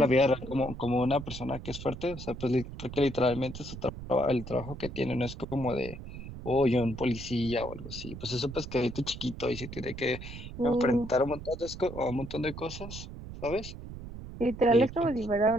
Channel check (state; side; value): noise; right; rumble, 11 dB below the sound